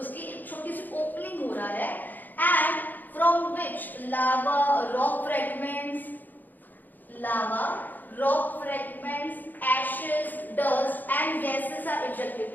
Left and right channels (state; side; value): late; right; 0.086 ms